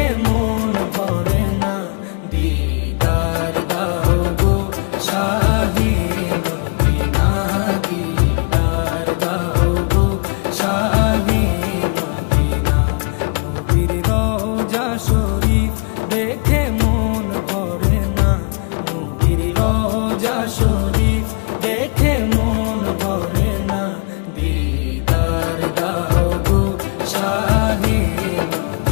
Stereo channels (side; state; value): right; quieter; 34.2 dB